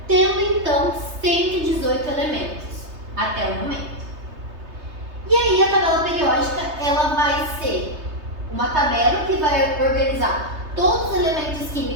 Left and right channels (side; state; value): left; late; 3.3 ms